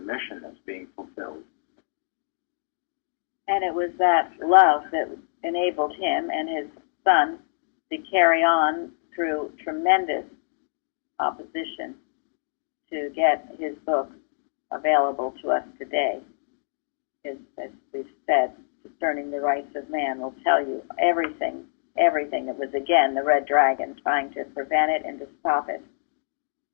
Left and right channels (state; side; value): silent; right; digital silence